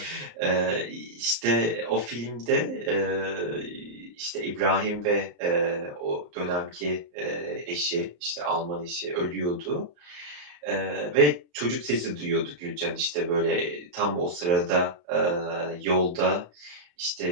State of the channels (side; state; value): left; late; 34 ms